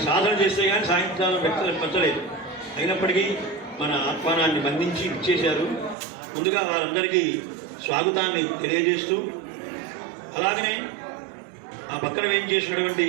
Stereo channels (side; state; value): left; drops out; at 6.0 s